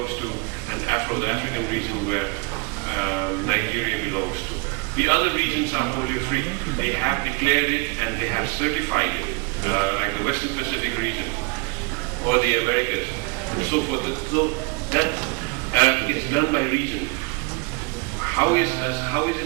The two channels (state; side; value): quieter; left; 28.0 dB